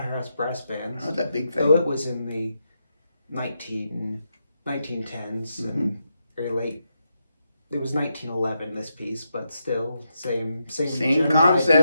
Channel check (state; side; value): inverted; both; correlation -0.84